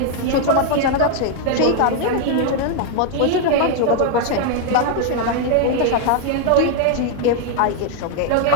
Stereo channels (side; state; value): both; different; correlation 0.00